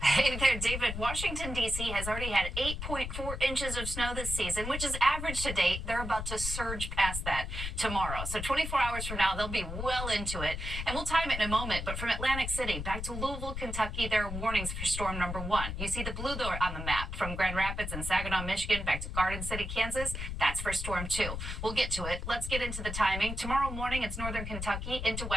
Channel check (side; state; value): left; noise; rumble, 5 dB below the sound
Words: Hey there, David. Washington, D.C. has already had 8.4 inches of snow this season, which is average to date. They're about to surge past that tomorrow. So 24 hours from now, they'll be well into it. And we'll time it in a moment. But from Atlantic City back to Louisville, Kentucky, there are warnings for storm number 1. You see the blue there on the map. From Grand Rapids and Saginaw, Michigan, back to Garden City, Kansas. That's for storm 2. We'll get to it. Let's get into the timing. Tomorrow morning, it's northern Kentucky into